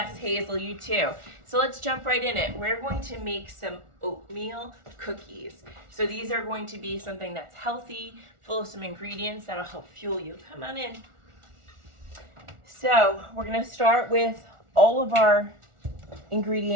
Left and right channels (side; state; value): left; late; 1.4 ms